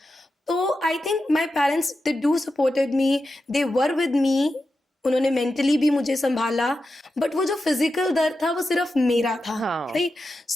तो I think my parents they do supported me, they were with me, उन्होंने मेंटली भी मुझे संभाला, बट वो जो फिजिकल दर्द था वो सिर्फ मेरा था, right?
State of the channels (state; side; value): normal; both; correlation 0.90